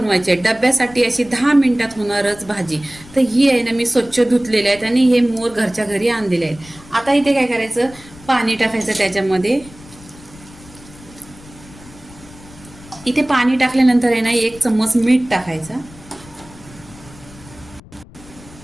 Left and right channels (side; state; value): left; noise; rumble, 21 dB below the sound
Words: आहे। डब्यासाठी अशी 10 मिनिटात होणारच भाजी। तर ही आहे ना, मी स्वच्छ धुतलेले आहेत आणि हे मोर घरच्या घरी आणलेले आहेत। आता इथे काय करायचं, पाणी टाकायचं त्याच्यामध्ये। इथे पाणी टाकल्यानंतर आहे ना 1 चम्मच मीठ टाकायचं।